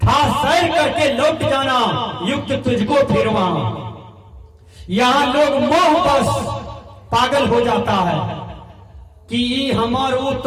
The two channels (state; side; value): identical; both; correlation 1.00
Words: सैर करके लौट जाना, युक्त तुझको फिर वहां। यहाँ लोग मोह बस पागल हो जाता है कि ये हमार वो